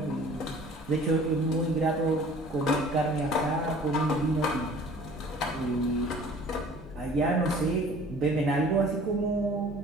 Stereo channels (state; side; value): normal; both; correlation 0.49